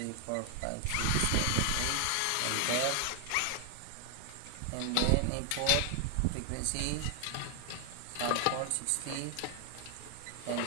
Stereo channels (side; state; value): both; different; correlation 0.00